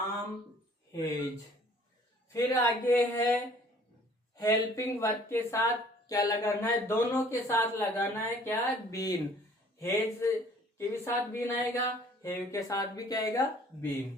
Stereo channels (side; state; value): both; normal; correlation 0.55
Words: हेज। फिर आगे है हेल्पिंग वर्ब के साथ क्या लगाना है? दोनों के साथ लगाना है क्या? बीन। हेज के भी साथ बीन आएगा, हेव के साथ भी क्या आएगा?